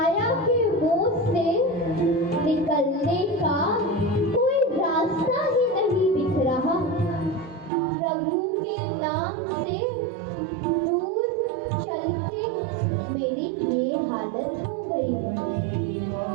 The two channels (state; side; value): drops out; left; at 7.7 s